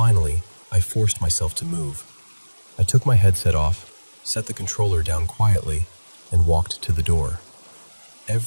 I forced myself to move. I took my headset off, set the controller down quietly, and walked to the door.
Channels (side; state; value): both; inverted; correlation -1.00